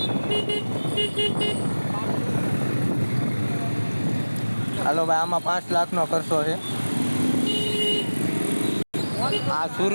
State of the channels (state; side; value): inverted; both; correlation -1.00